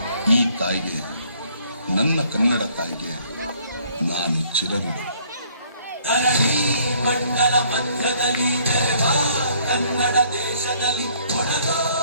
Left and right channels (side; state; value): both; inverted; correlation -0.61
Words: ಈ ತಾಯಿಗೆ, ನನ್ನ ಕನ್ನಡ ತಾಯಿಗೆ ನಾನು ಚಿರಋಣಿ. ಮಂಡಲ ಮಧ್ಯದಲ್ಲಿ ಕನ್ನಡ ದೇಶದಲ್ಲಿ